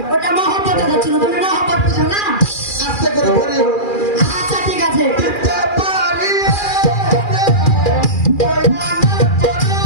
ওটা মহব্বত হচ্ছিল, তুমি মহব্বত বুঝো না? আস্তে করে ধরি আচ্ছা ঠিক আছে। দিতে পারি হইনা না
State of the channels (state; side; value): late; right; 2.4 ms